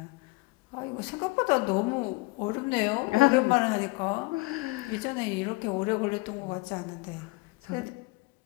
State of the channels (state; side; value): quieter; right; 23.3 dB